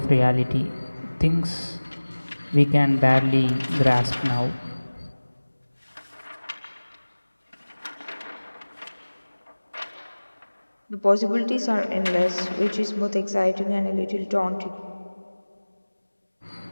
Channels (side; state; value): both; inverted; correlation -1.00